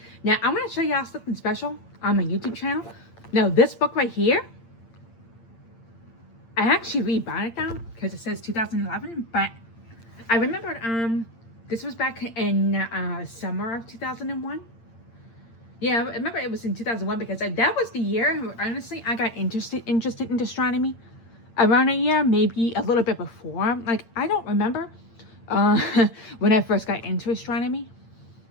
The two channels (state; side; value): late; right; 8.7 ms